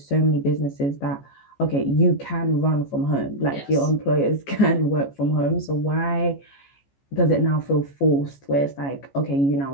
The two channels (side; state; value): right; late; 14 ms